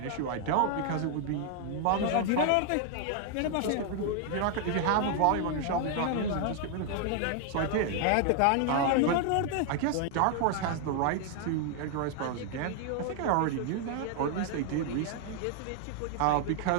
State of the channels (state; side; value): different; both; correlation 0.00